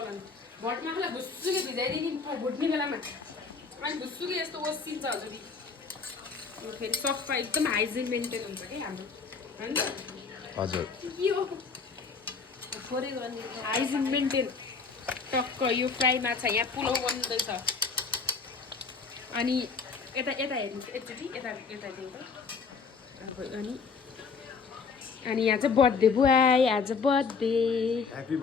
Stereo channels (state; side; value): quieter; right; 5.0 dB